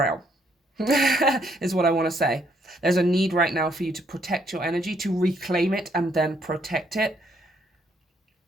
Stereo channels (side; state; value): both; normal; correlation 0.70